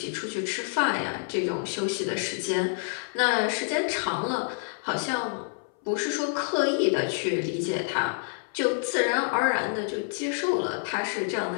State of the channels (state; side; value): silent; right; 59 dB below the other